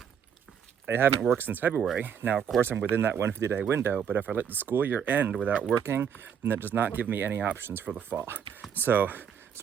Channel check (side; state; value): left; quieter; 7.8 dB